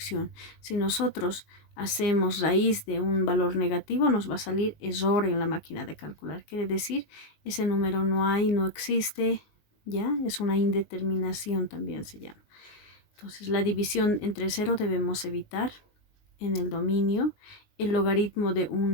Si nosotros hacemos raíz de un valor negativo, nos va a salir error en la máquina de calcular. Quiere decir, ese número no hay, no existe, ¿ya? Es una indeterminación también se llama. Entonces, la división entre 0 debemos evitar en el dominio, el logaritmo de un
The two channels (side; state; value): right; late; 19 ms